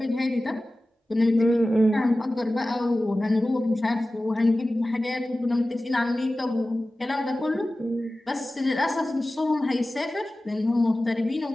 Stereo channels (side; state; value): both; normal; correlation 0.96